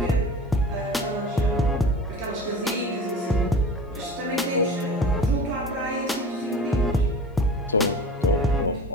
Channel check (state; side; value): normal; both; correlation 0.36